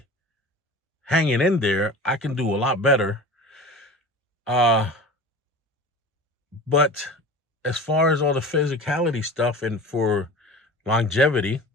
hanging in there, I can do a lot better. But as far as all the physicality stuff and for longevity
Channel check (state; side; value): normal; both; correlation 0.36